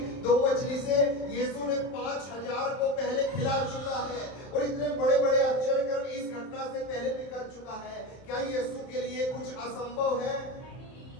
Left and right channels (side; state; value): right; late; 31 ms